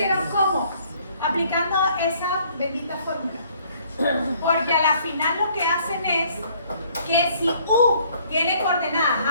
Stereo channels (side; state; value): both; inverted; correlation -0.61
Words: ¿cómo? Aplicando esa bendita fórmula. Porque a la final lo que hacen es que si u tiene coordenadas